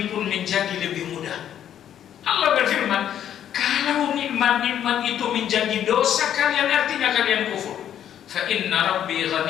pun menjadi lebih mudah. Allah berfirman, kalau nikmat-nikmat itu menjadi dosa kalian, artinya kalian kufur. Fa inna rabbi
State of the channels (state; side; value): quieter; right; 10.2 dB